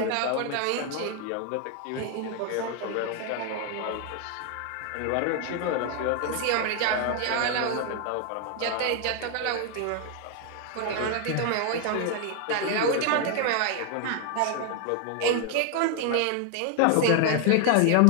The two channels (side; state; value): both; different; correlation 0.00